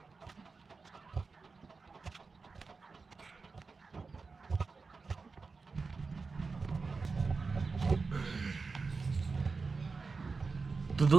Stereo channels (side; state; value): left; quieter; 4.4 dB